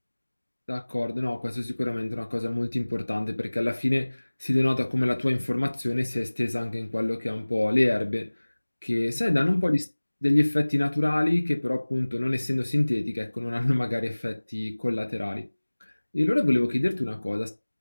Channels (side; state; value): both; inverted; correlation -1.00